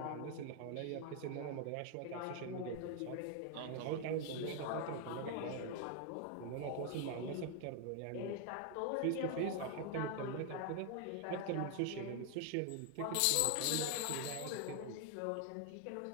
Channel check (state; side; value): different; both; correlation 0.00